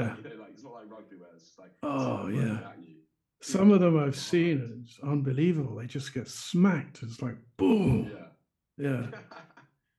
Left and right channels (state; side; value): identical; both; correlation 1.00